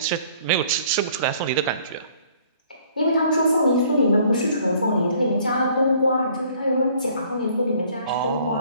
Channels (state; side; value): inverted; both; correlation -0.58